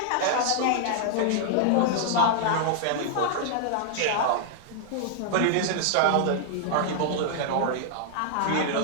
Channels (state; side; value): different; both; correlation 0.00